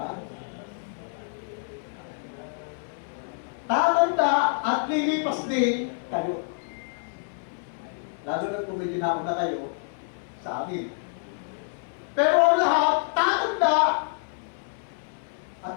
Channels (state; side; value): silent; right; 60 dB below the other